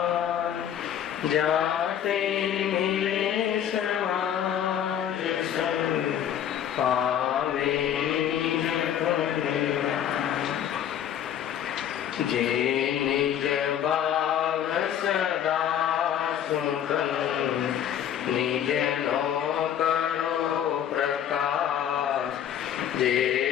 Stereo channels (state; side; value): quieter; right; 9.8 dB